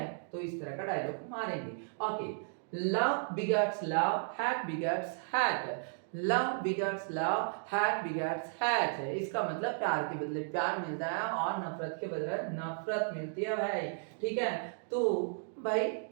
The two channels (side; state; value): left; silent; digital silence